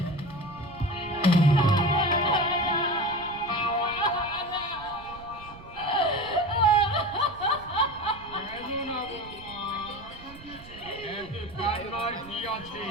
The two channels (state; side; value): noise; right; rumble, 18 dB below the sound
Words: কেন না বৌমা? এতে কান্নার কি আছে?